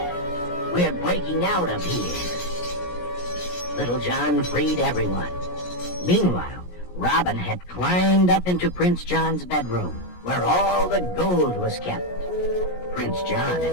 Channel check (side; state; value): right; late; 17 ms